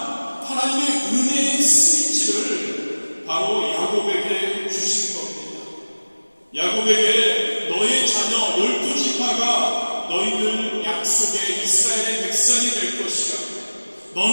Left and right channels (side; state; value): both; inverted; correlation -1.00